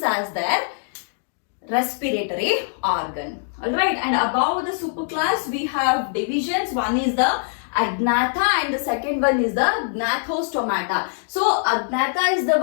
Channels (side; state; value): right; silent; digital silence